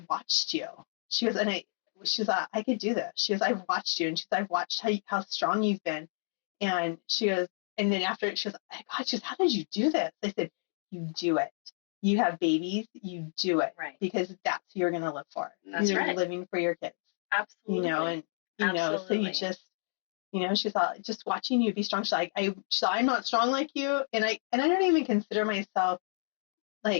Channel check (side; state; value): right; silent; 57 dB below the other